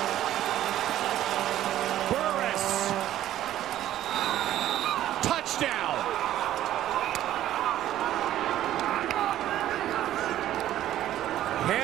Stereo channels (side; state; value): left; quieter; 12.8 dB